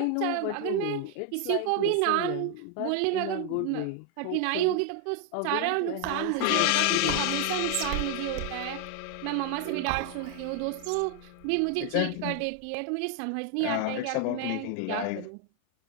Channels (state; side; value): different; both; correlation 0.00